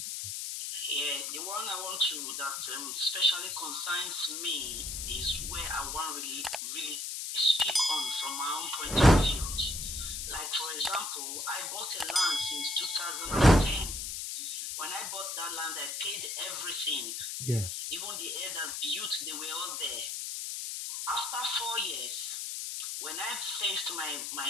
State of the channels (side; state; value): left; noise; hiss, 4 dB below the sound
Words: Yeah, the one I want to that especially concerns me is where I want really speak on from my own point of view. Like for example, I bought a land since 2010. When I bought that land, I paid everything. Yeah. Even the air that built, they were all there. After 4 years, when I fenced my